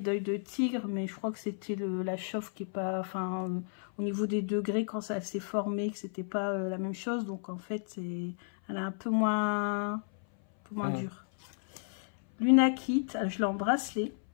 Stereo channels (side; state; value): right; silent; 56 dB below the other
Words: de tigre, mais je crois que c'était la chauffe qui est pas... Enfin, au niveau des degrés, quand ça s'est formé, que c'était pas la même chose. Donc, en fait, elle est un peu moins dure. Lunakite, je l'ai en bracelet.